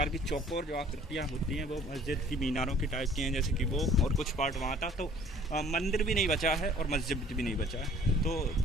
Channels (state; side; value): normal; both; correlation 0.53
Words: की चौकोर जो आकृतियाँ होती हैं वो मस्जिद की मीनारों की टाइप की हैं, जैसे कि वो, और कुछ पार्ट वहाँ था। तो मंदिर भी नहीं बचा है और मस्जिद भी नहीं बचा है, तो